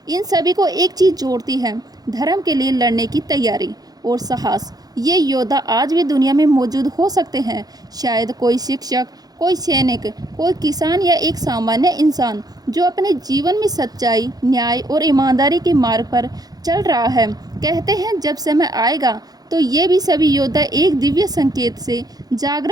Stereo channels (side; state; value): left; late; 0.19 ms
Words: इन सभी को एक चीज जोड़ती है, धर्म के लिए लड़ने की तैयारी और साहस। ये योद्धा आज भी दुनिया में मौजूद हो सकते हैं। शायद कोई शिक्षक, कोई सैनिक, कोई किसान या एक सामान्य इंसान जो अपने जीवन में सच्चाई, न्याय और ईमानदारी के मार्ग पर चल रहा है। कहते हैं जब समय आएगा तो ये भी सभी योद्धा एक दिव्य संकेत से